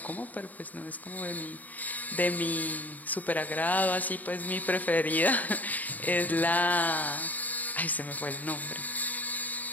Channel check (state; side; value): late; right; 0.079 ms